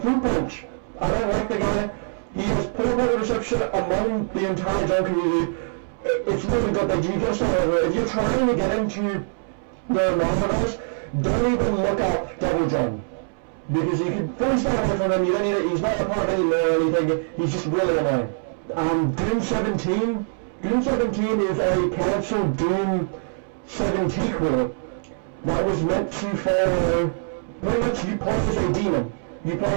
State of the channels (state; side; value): silent; left; 63 dB below the other